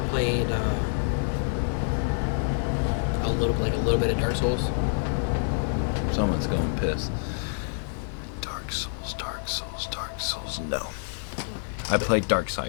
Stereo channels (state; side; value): silent; right; digital silence